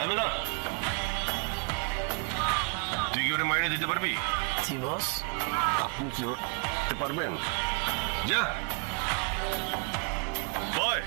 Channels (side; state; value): left; quieter; 38.6 dB